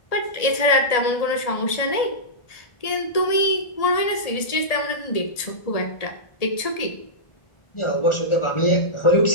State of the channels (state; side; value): late; right; 1.8 ms